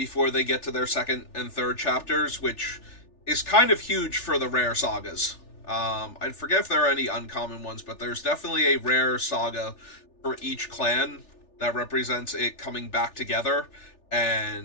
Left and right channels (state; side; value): late; right; 3.4 ms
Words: they get to their second and third chapters, which is kind of huge for the rare sagas. I forget if there are any uncommon ones, but there's definitely a rare saga for each clan that represents it coming back together,